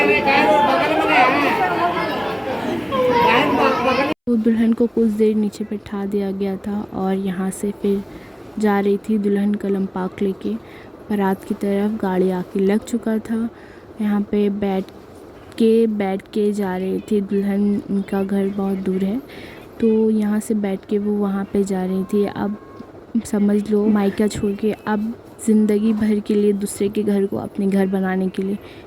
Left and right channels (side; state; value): both; identical; correlation 1.00